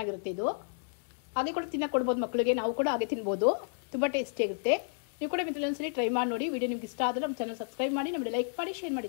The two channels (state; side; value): silent; right; digital silence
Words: ಇದು. ಹಾಗೆ ಕೂಡ ತಿನ್ನಕ್ಕೆ ಕೊಡ್ಬೋದು ಮಕ್ಕಳಿಗೆ, ನಾವು ಕೂಡ ಹಾಗೆ ತಿನ್ಬೋದು, ತುಂಬಾ ಟೇಸ್ಟಿ ಆಗುತ್ತೆ. ನೀವು ಕೂಡ ಒಂದ್ಸಲಿ ಟ್ರೈ ಮಾಡಿ ನೋಡಿ. ವಿಡಿಯೋ ನಿಮ್ಗೆ ಇಷ್ಟ ಆದ್ರೆ ನಮ್ಮ ಚಾನಲ್ ಸಬ್ಸ್ಕ್ರೈಬ್ ಮಾಡಿ, ನಮಗೆ ಲೈಕ್ ಮಾಡಿ, ಶೇರ್